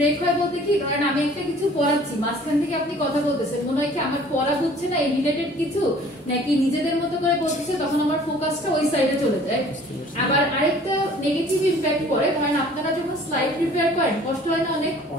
হয় বলতে কি কারণ আমি একটা কিছু পড়াচ্ছি মাঝখান থেকে আপনি কথা বলতেছেন মনে হয় কি আমার পড়া বুঝছে না এই রিলেটেড কিছু নাকি নিজেদের মতো করে বলতেছে তখন আমার ফোকাসটা ওই সাইডে চলে যায় আবার আরেকটা নেগেটিভ ইমপ্যাক্ট পড়ে কারণ আপনারা যখন স্লাইড প্রিপেয়ার করেন কষ্ট হয় না অনেক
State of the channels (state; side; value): normal; both; correlation 0.52